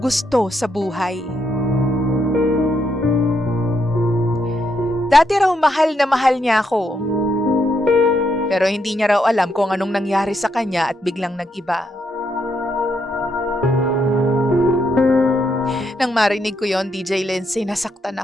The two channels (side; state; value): both; normal; correlation 0.78